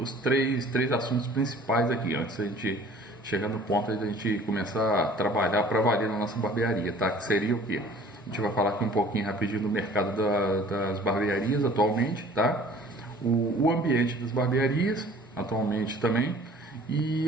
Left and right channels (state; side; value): normal; both; correlation 0.50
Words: três assuntos principais aqui, antes da gente chegar no ponto da gente começar a trabalhar para valer na nossa barbearia, tá? Que seria o quê? A gente vai falar aqui um pouquinho rapidinho do mercado das barbearias atualmente, tá? O ambiente das barbearias atualmente também, e